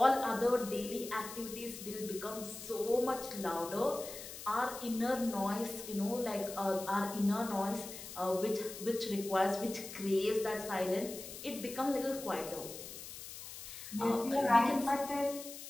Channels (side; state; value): left; noise; hiss, 11 dB below the sound